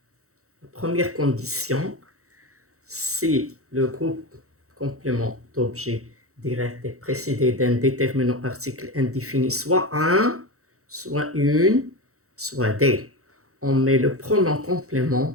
La première condition, si le groupe complément d'objet direct est précédé d'un déterminant article indéfini, soit un, soit une, soit des. On met le pronom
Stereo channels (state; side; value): late; left; 0.64 ms